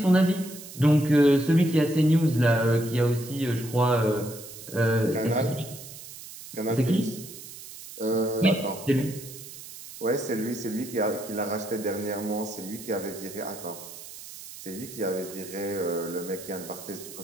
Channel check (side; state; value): right; noise; hiss, 14 dB below the sound